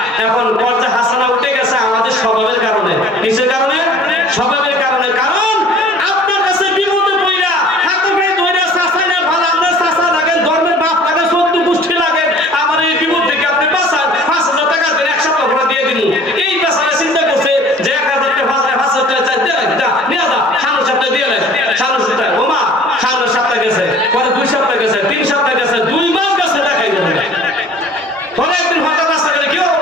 এখন কর্জে হাসানা উঠে গেছে আমাদের স্বভাবের কারণে। কিসের কারণে? স্বভাবের কারণে। কারণ আপনার কাছে বিপদে পড়া হাতে পেয়ে ধরে চাচাই না ভালো, আপনার চাচা লাগেন, ধর্মের বাপ লাগেন, 14 গোষ্ঠী লাগেন, আমার এই বিপদ থেকে আপনি বাঁচান, 5000 টাকা দিয়ে 1 সপ্তাহ করে দিয়ে দিন। এই বেচারা চিন্তা করছে যে 1000 টাকা 5000 টাকা চাই দিয়ে যা নিয়ে যা, সামনের সপ্তাহে দিয়ে রাখ, সামনের সপ্তাহে ওমা সামনের সপ্তাহে গেছে, পরে 2 সপ্তাহ গেছে, 3 সপ্তাহ গেছে, 2 মাস গেছে, দেখাই যাবে না। পরে একদিন হঠাৎ রাস্তা গেলে কেউ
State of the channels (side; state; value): both; normal; correlation 0.49